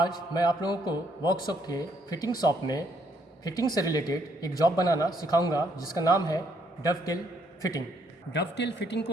मैं आप लोगों को वर्कशॉप के फिटिंग शॉप में फिटिंग से रिलेटेड एक जॉब बनाना सिखाऊंगा जिसका नाम है डवटेल फिटिंग। डवटेल फिटिंग को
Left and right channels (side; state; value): both; normal; correlation 0.70